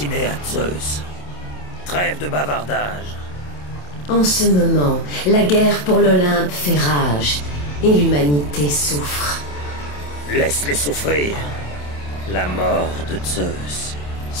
à Zeus. Trêve de bavardage. En ce moment, la guerre pour l'Olympe fait rage, et l'humanité souffre. Laisse-les souffrir. La mort de Zeus,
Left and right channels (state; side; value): late; right; 27 ms